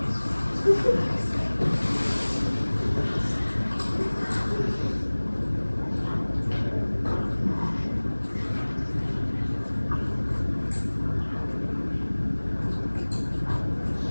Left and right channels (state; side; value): inverted; both; correlation -1.00